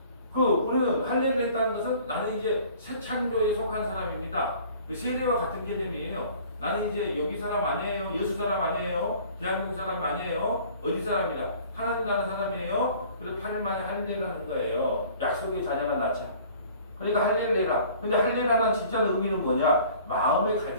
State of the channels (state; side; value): inverted; both; correlation -0.50